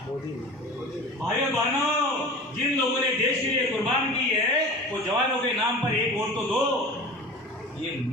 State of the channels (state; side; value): normal; both; correlation 0.36